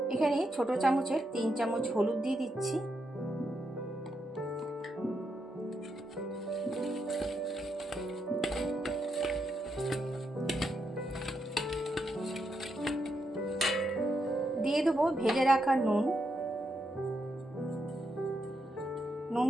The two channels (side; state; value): both; normal; correlation 0.82